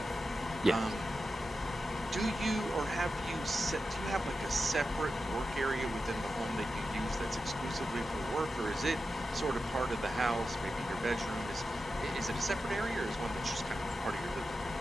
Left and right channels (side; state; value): both; normal; correlation 0.91